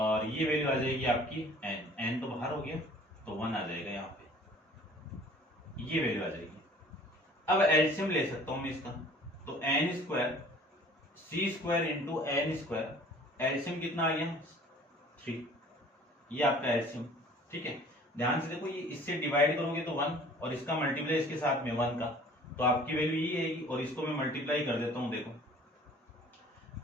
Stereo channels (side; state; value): both; normal; correlation 0.50